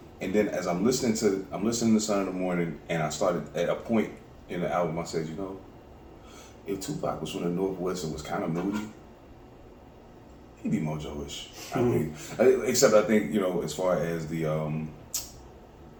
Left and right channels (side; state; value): both; identical; correlation 1.00